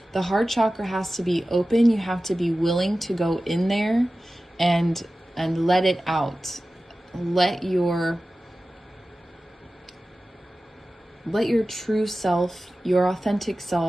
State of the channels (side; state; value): both; normal; correlation 0.95